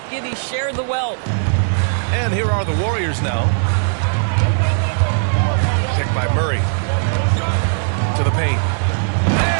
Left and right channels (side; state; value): left; silent; digital silence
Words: Giddey share the wealth. And here are the Warriors now. Picked by Murray. To the paint.